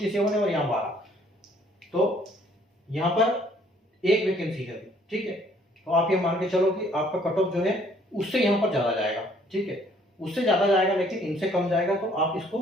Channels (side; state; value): both; normal; correlation 0.62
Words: है और यहाँ 12, तो यहाँ पर एक वैकेंसी है। ठीक है, तो आप ये मान के चलो कि आपका कट ऑफ जो है उससे यहाँ पर ज्यादा जाएगा। ठीक है, उससे ज्यादा जाएगा लेकिन इनसे कम जाएगा, तो आप इसको